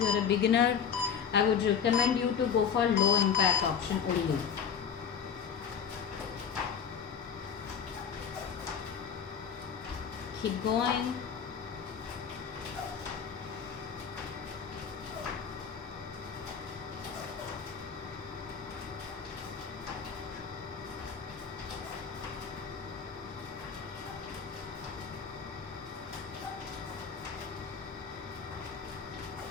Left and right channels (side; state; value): right; quieter; 7.1 dB